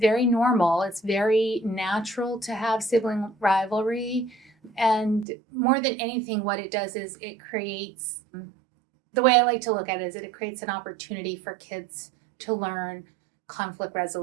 normal. It's very natural to have sibling rivalry. And more than anything, what it does is it creates, the way I like to look at it is it creates an opportunity for kids to learn conflict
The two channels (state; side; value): drops out; left; at 5.2 s